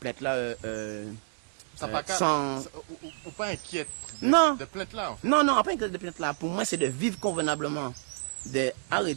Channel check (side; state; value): left; silent; digital silence